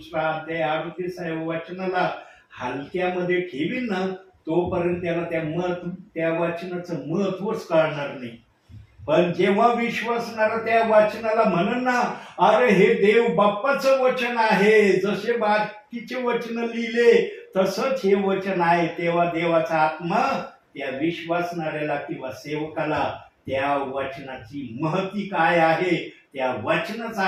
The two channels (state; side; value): identical; both; correlation 1.00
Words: अध्याय 38 वचनाला हलक्यामध्ये ठेवील ना, तोपर्यंत त्याला त्या वचनाचं महत्वच कळणार नाही. पण जेव्हा विश्वासणारा त्या वचनाला म्हणन ना, अरे हे देव बाप्पाचं वचन आहे, जसे बाकीचे वचन लिहिले तसंच हे वचन आहे, तेव्हा देवाचा आत्मा त्या विश्वासणाऱ्याला किंवा सेवकाला त्या वचनाची महती काय आहे, त्या वचनाचा